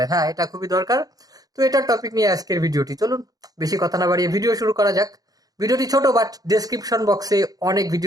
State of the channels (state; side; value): late; left; 0.18 ms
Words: হ্যাঁ, এটা খুবই দরকার। তো এটার টপিক নিয়ে আজকের ভিডিওটি, চলুন বেশি কথা না বাড়িয়ে ভিডিও শুরু করা যাক। ভিডিওটি ছোট, বাট ডেসক্রিপশন বক্সে অনেক